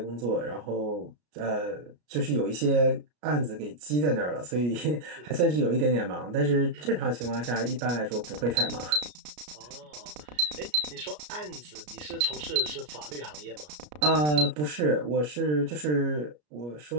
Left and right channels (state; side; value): late; left; 33 ms